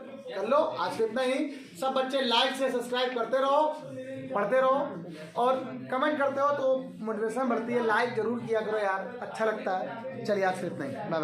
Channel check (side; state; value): both; identical; correlation 1.00